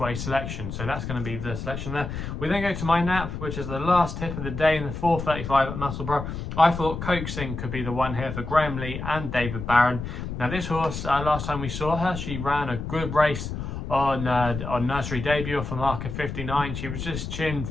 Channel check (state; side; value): noise; left; rumble, 6 dB below the sound